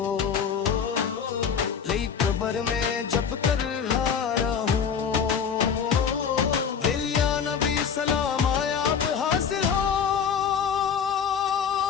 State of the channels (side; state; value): right; quieter; 7.1 dB